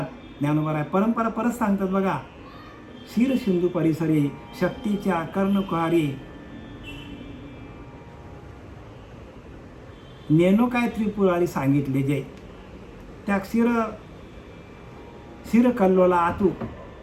ज्ञानोबा परंपरा परत सांगतात बघा. क्षीर सिंधू परिसरी शक्तीच्या कर्णकुहारी, नेनो काय त्रिपुरारी सांगितले जे. त्या क्षीर कल्लोला आतू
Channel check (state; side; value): identical; both; correlation 1.00